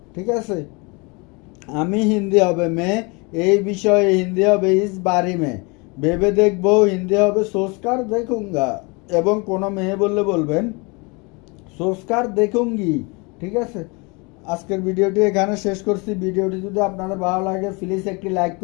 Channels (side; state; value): right; quieter; 29.2 dB